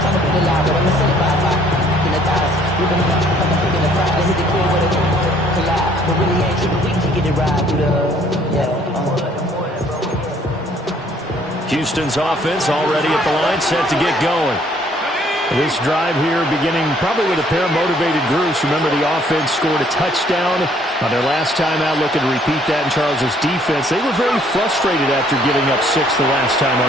Houston's offense already at the line, set to get going. This drive here beginning probably with a pair of motivated groups. Remember, the offense scored a touchdown on their last time out, looking to repeat that in Charles's defense. They were very frustrated after giving up 6 the last time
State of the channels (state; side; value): normal; both; correlation 0.62